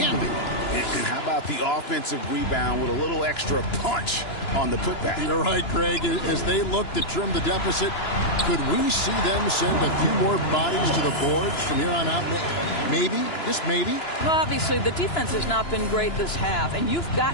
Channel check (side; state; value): right; late; 2.9 ms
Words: And how about the offensive rebound with a little extra punch on the putback? You're right, Craig. As they look to trim the deficit, could we see them send a few more bodies to the boards from here on out? Maybe, just maybe. Well, obviously, the defense has not been great this half, and you've